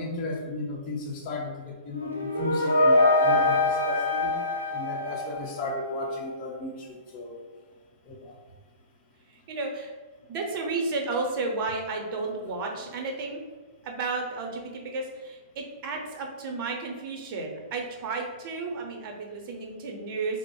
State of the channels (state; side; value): inverted; both; correlation -0.42